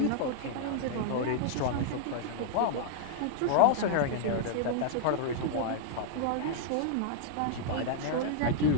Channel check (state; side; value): different; both; correlation -0.01